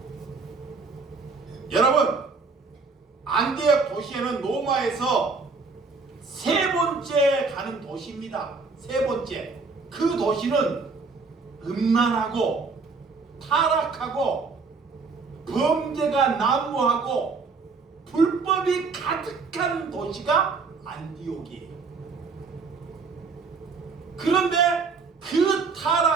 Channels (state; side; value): quieter; left; 4.4 dB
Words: 여러분, 안디옥 도시에는 로마에서 세 번째 가는 도시입니다. 세 번째. 그 도시는 음란하고 타락하고 범죄가 난무하고 불법이 가득한 도시가 안디옥이에요. 그런데 그